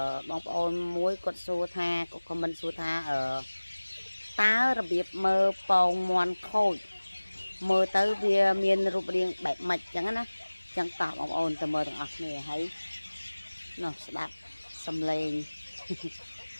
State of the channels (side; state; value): both; inverted; correlation -1.00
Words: បងប្អូនមួយគាត់សួរថាគាត់ខមមិនសួរថាតើរបៀបមើលពងមាន់ខូចមើលទៅវាមានរូបរាងបែបម៉េចចឹងណាចឹងតោះបងប្អូនទៅមើលទាំងអស់គ្នាហើយនោះស្ដាប់សំឡេង